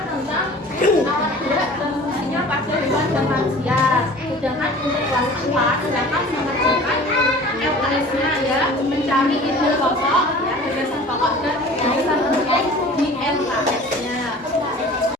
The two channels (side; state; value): both; normal; correlation 0.44